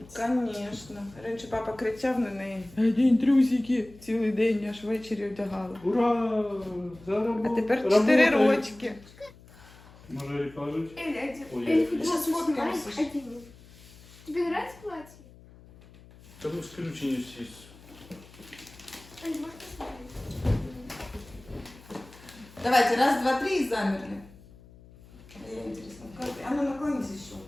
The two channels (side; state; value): left; noise; hum, 22 dB below the sound